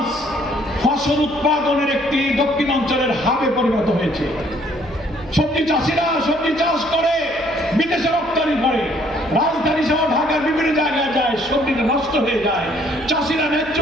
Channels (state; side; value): noise; left; hum, 21 dB below the sound